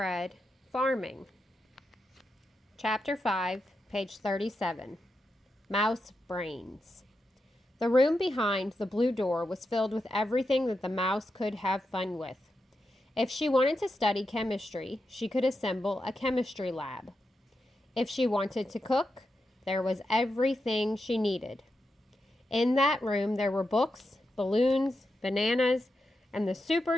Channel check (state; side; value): normal; both; correlation 0.87